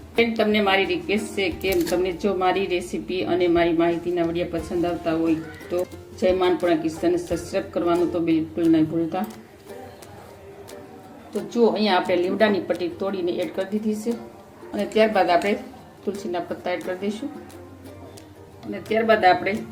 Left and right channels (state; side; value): identical; both; correlation 1.00